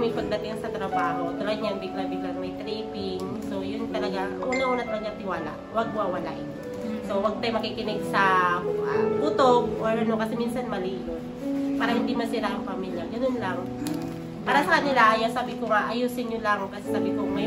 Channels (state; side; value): identical; both; correlation 1.00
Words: pagdating sa trabaho. Tulad niyan, bigla-bigla may tripping. So, yun talaga, una-una talaga tiwala. Huwag wawalain. So, huwag tayo makikinig sa putok or kasi minsan mali yun. Para hindi masira ang pamilya. Ganun lang. Para sa kanila, sabi ko nga, ayusin nyo lang. Kasi sabi ko,